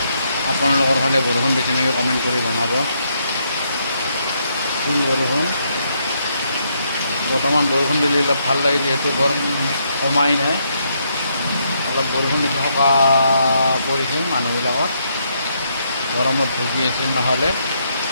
আপোনালোকৰ ফালে বৰষুণ দিছে নেকি কমেণ্ট কৰি জনাব। ফুল বৰষুণ। বৰ্তমান বৰষুণ দিলে অলপ ভাল লাগে, যিহেতু গৰম কমাই নাই। অলপ বৰষুণ দিছে, সকাহ পৰিছিল মানুহবিলাকৰ, গৰমত ভুগি আছিল। নহ'লে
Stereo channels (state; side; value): inverted; both; correlation -0.76